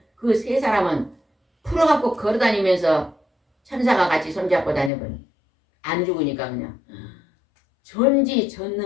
그 세 사람은 풀어갖고 걸어다니면서 천사가 같이 손잡고 다녀버려. 안 죽으니까 그냥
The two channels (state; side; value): drops out; right; at 4.9 s